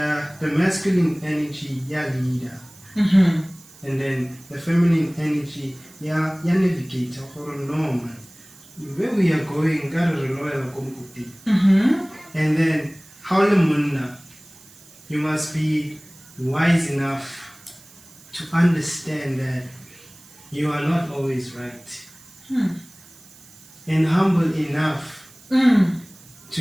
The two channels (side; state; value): right; noise; hiss, 23 dB below the sound